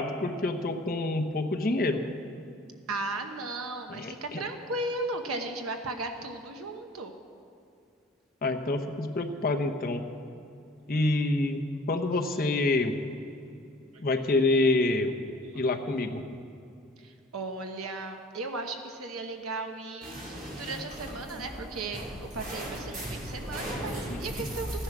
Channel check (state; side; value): normal; both; correlation 0.47